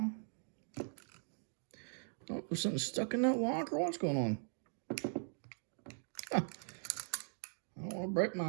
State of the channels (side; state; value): left; silent; digital silence